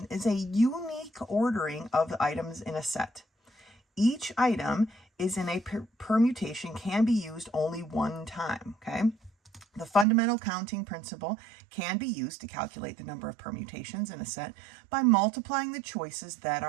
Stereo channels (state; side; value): drops out; left; at 10.1 s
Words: is a unique ordering of the items in a set. Each item is in a permutation can be used only one time, okay? The fundamental counting principle can be used to calculate the number of permutations in a set by multiplying the choices that